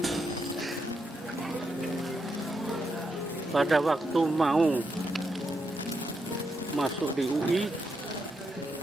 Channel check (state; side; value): normal; both; correlation 0.82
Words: Pada waktu mau masuk di UI,